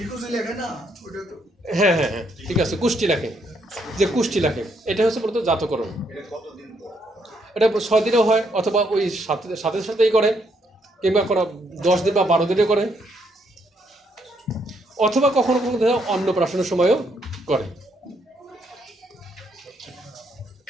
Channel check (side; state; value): both; normal; correlation 0.73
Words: হ্যাঁ হ্যাঁ হ্যাঁ, ঠিক আছে, কুষ্টি লেখে, যে কুষ্টি লেখে, এটা হচ্ছে মূলত জাতকরণ। এটা 6 দিনেও হয়, অথবা ওই সাথে সাথেই করে, কিংবা 10 দিন বা 12 দিনে করে, অথবা কখনো কখনো অন্নপ্রাশনের সময়ও করে।